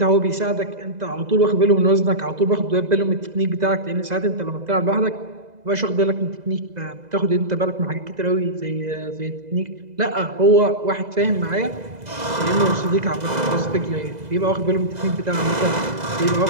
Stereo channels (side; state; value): left; late; 2.0 ms